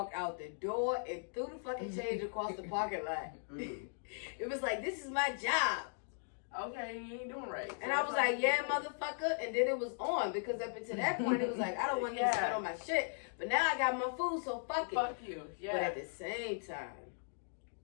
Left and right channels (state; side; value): silent; right; digital silence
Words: out the door and threw the fucking change across the parking lot. It was like, this is my job. Okay, you ain't doing right. And I was like, yeah, motherfucker. And then it was on because up until that point, it was like, I don't want you to spend on my shit. But now I got my food, so fuck it. Fuck you. Yeah. But at the same time,